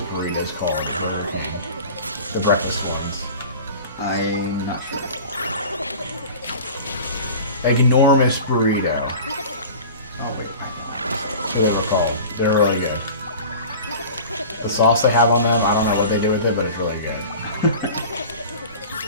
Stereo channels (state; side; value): inverted; both; correlation -0.38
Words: burritos called? The breakfast ones. I'm not sure. Enormous burrito. Oh wait. That's what they're called. They're really good. The sauce they have on them, I don't know what they do with it, but it's really good.